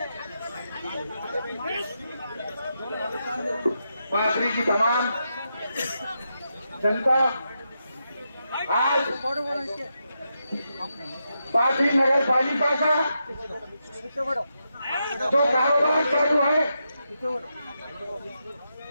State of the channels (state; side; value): inverted; both; correlation -0.85